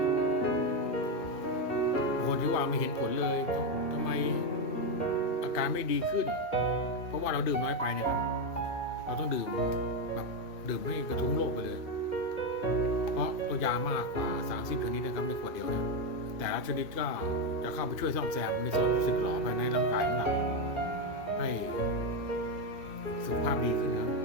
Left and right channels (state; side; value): late; right; 2.5 ms